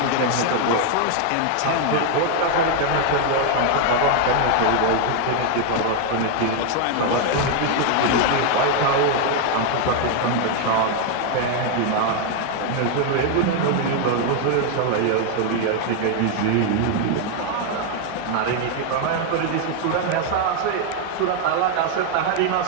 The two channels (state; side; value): different; both; correlation 0.00